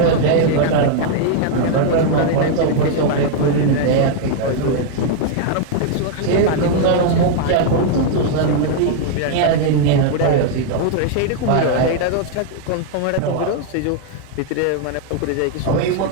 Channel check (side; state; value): both; different; correlation 0.00